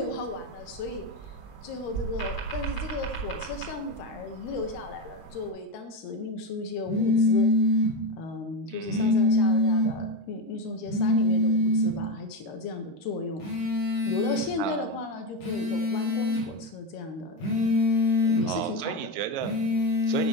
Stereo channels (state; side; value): late; right; 13 ms